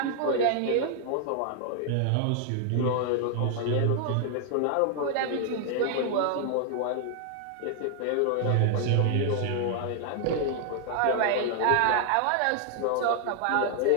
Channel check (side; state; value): both; different; correlation 0.00